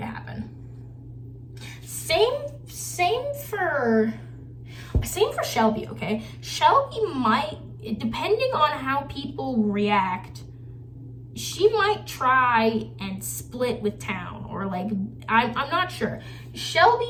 happen. Same for Shelby, okay? Shelby might, depending on how people react, she might try and split with Town, or like, I'm not sure.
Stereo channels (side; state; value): both; identical; correlation 1.00